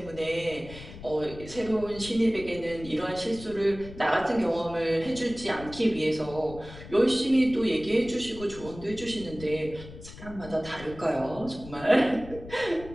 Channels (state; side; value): noise; left; rumble, 15 dB below the sound